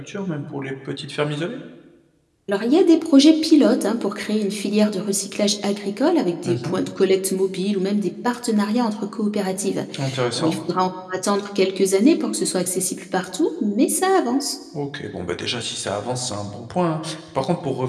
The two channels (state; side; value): identical; both; correlation 1.00